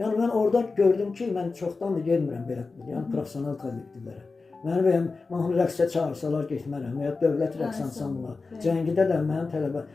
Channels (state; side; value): quieter; right; 4.0 dB